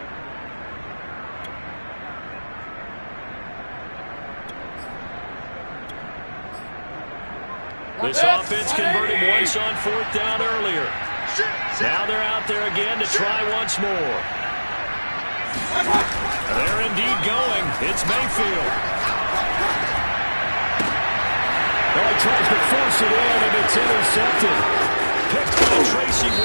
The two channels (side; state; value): both; inverted; correlation -1.00